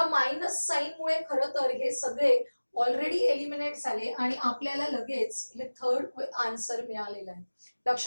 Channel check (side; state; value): both; inverted; correlation -1.00